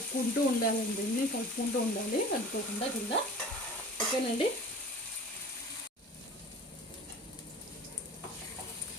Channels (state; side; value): normal; both; correlation 0.41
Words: ఉండాలండి, కలుపుకుంటూ ఉండాలి, కలుపుకోకుండా కింద. ఓకేనండి.